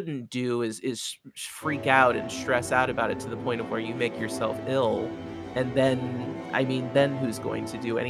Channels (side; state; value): both; identical; correlation 1.00